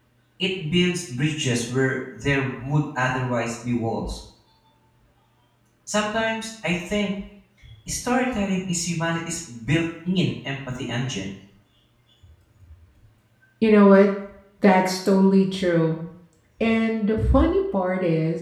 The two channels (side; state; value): both; identical; correlation 1.00